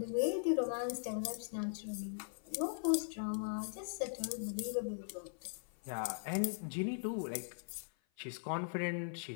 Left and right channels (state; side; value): silent; right; 51 dB below the other